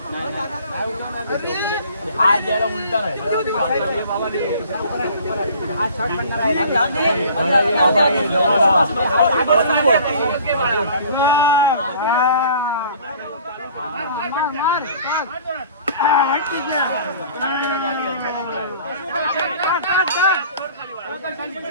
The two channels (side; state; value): both; inverted; correlation -0.49